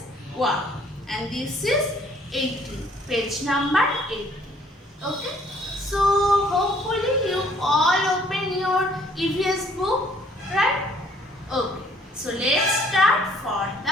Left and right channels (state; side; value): normal; both; correlation 0.60